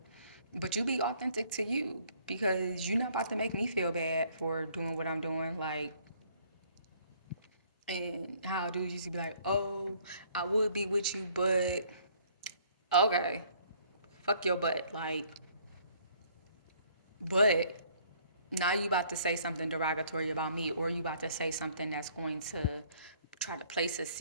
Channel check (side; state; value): both; inverted; correlation -0.61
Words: but you be authentic to you, because you're not about to make me feel bad for doing what I'm doing. Like, and how dudes used to be like, oh, I would be with you, but okay, fuck your butt. Like, but now you about to say something derogatory about me, or you about to say something that's going to try to place a